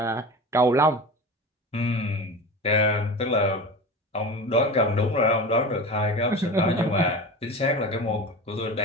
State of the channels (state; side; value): normal; both; correlation 0.30